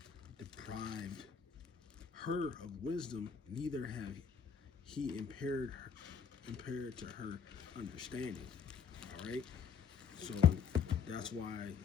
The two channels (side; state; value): right; quieter; 6.7 dB